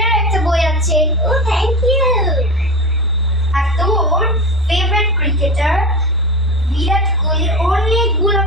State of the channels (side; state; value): both; normal; correlation 0.27